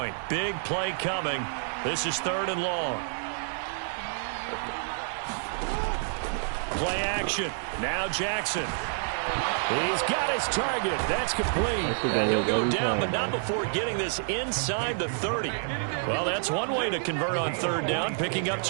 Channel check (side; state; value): left; silent; 59 dB below the other